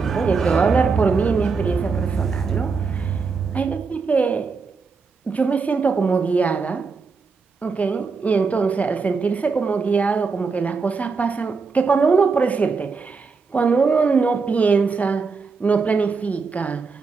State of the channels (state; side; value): quieter; left; 4.8 dB